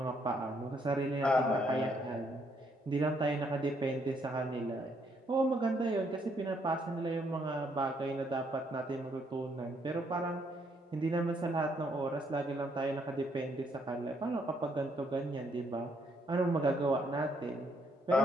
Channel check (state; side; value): normal; both; correlation 0.71